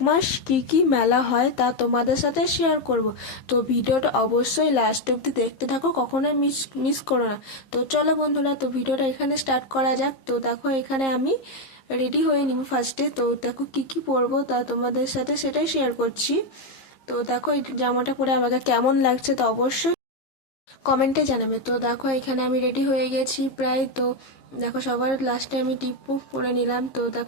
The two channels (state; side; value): late; right; 15 ms